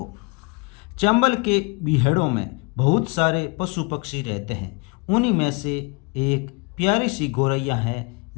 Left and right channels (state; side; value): quieter; right; 29.6 dB